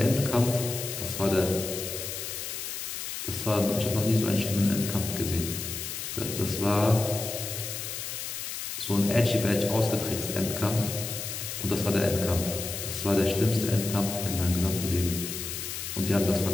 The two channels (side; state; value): left; noise; hiss, 6 dB below the sound